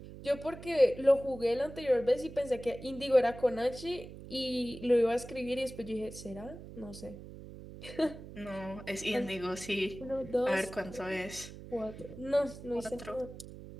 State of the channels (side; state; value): right; noise; hum, 14 dB below the sound